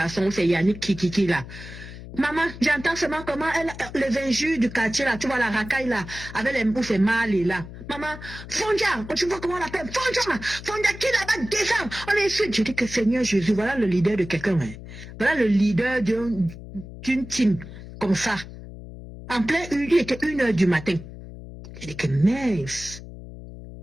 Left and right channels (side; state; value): left; noise; hum, 13 dB below the sound